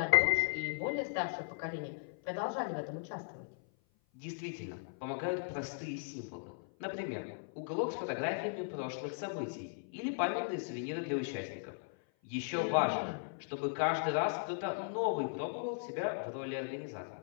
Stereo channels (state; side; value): silent; right; 53 dB below the other